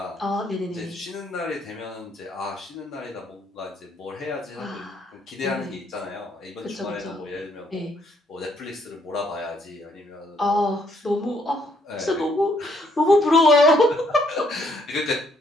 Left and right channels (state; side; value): normal; both; correlation 0.69